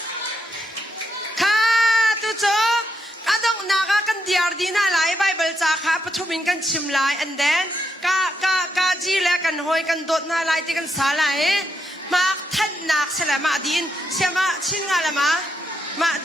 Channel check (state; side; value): normal; both; correlation 0.80